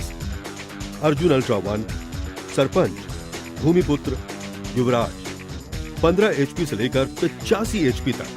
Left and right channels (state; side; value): identical; both; correlation 1.00